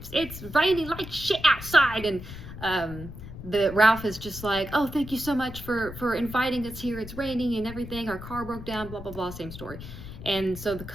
it's raining like shit outside," and the Ralph is just like, "Oh, thank you so much for inviting us here. It's raining and everything. Our car broke down. Blah blah blah. Same story." And so the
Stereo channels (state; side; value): noise; left; rumble, 12 dB below the sound